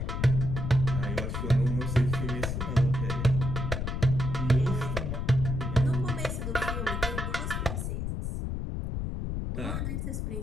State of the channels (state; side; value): noise; left; rumble, 2 dB below the sound